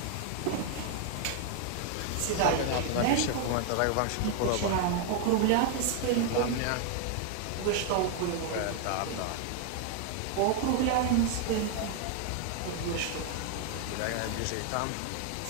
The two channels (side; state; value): both; different; correlation 0.00